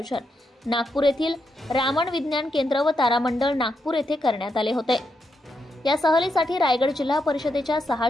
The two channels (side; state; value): both; normal; correlation 0.82